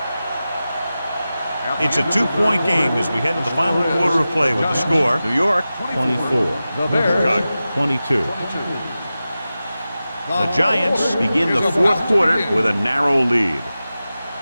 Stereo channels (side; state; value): both; inverted; correlation -0.94